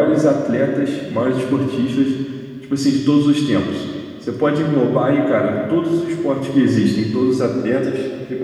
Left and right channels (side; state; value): both; identical; correlation 1.00